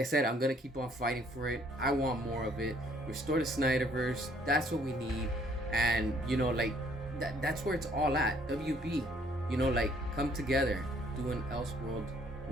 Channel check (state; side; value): normal; both; correlation 0.63